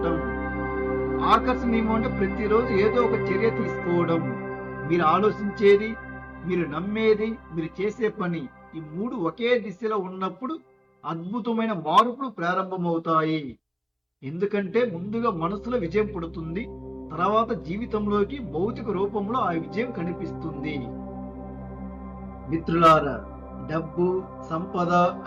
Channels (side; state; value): both; identical; correlation 1.00